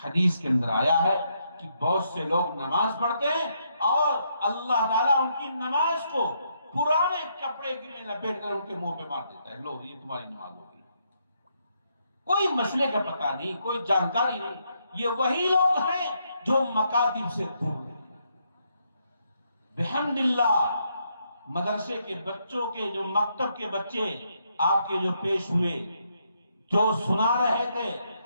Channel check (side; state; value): both; inverted; correlation -0.76